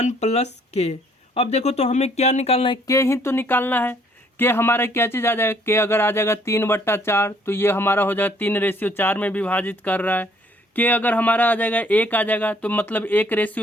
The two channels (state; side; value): normal; both; correlation 0.63